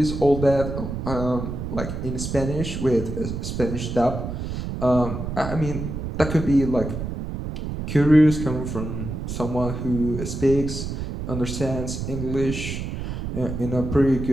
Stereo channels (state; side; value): noise; right; rumble, 5 dB below the sound